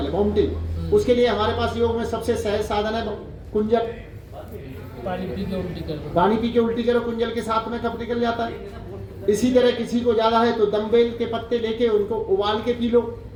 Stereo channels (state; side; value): identical; both; correlation 1.00